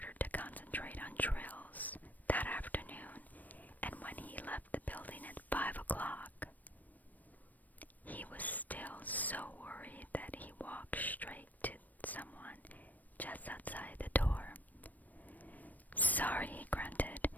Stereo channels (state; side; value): late; right; 0.082 ms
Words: to concentrate on drills that afternoon, and when he left the building at 5 o'clock, he was still so worried that he walked straight to someone just outside the door. Sorry, he grunted,